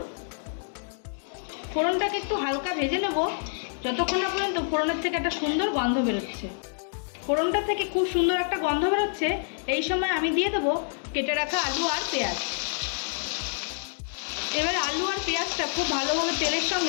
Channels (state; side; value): silent; right; digital silence